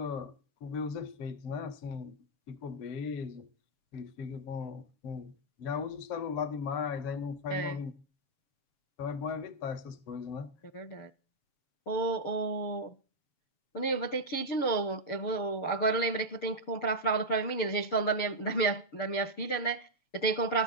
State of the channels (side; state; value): right; late; 7.1 ms